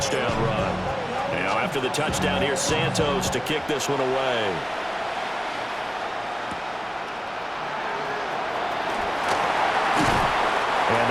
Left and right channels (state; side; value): identical; both; correlation 1.00